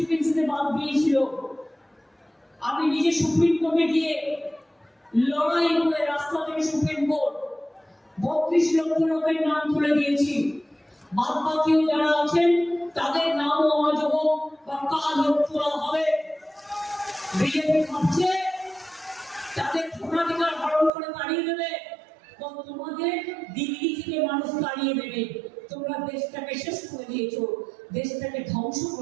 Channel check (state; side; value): drops out; left; at 20.9 s